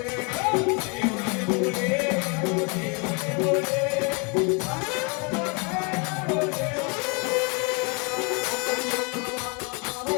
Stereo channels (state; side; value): quieter; right; 31.9 dB